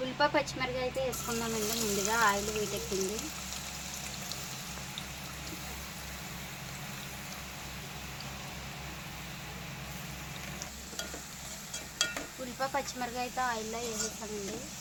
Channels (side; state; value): both; identical; correlation 1.00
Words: ఉల్లిపాయ పచ్చిమిరపకాయ అయితే వేసుకుందామండి. ముందుగా ఆయిల్ వేడెక్కింది. ఉల్లిపాయ పచ్చిమిరపకాయ అయితే ఆయిల్లో వేసేస్తామండి.